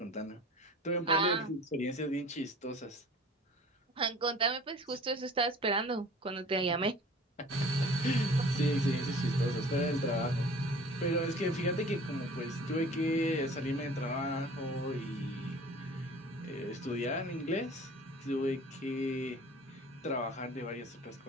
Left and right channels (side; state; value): both; normal; correlation 0.45